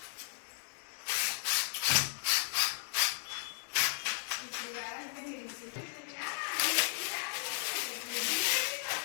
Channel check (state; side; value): silent; right; digital silence